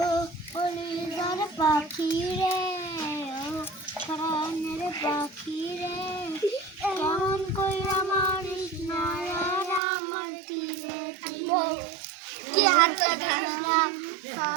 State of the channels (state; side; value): drops out; left; at 9.8 s